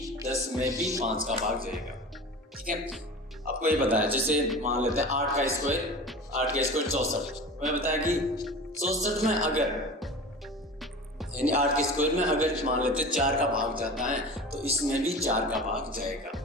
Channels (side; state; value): both; normal; correlation 0.35